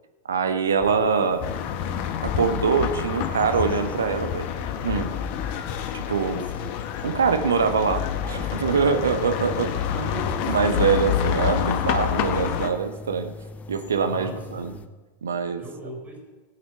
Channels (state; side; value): inverted; both; correlation -0.36